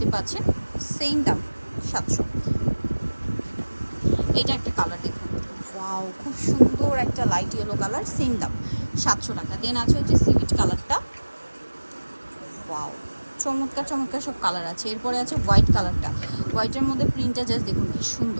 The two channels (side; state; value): both; inverted; correlation -1.00